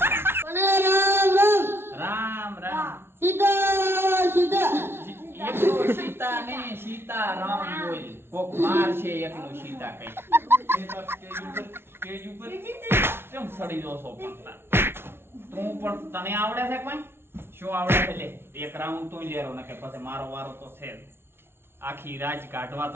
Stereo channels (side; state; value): left; late; 0.12 ms